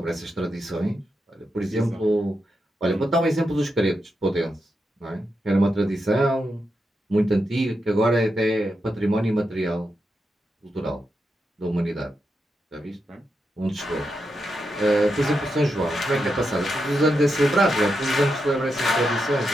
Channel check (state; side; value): normal; both; correlation 0.86